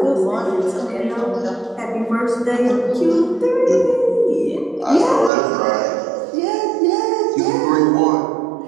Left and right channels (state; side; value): drops out; left; at 5.3 s